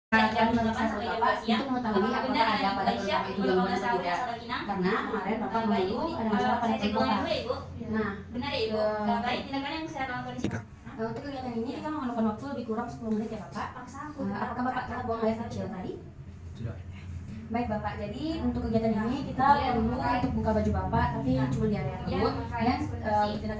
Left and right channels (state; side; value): identical; both; correlation 1.00